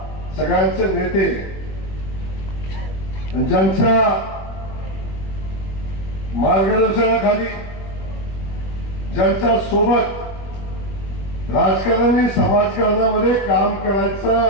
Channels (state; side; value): late; right; 21 ms